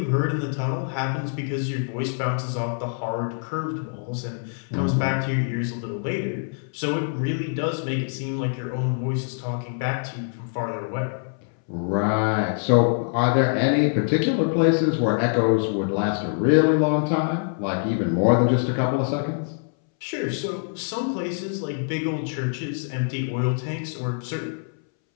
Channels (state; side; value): silent; right; 62 dB below the other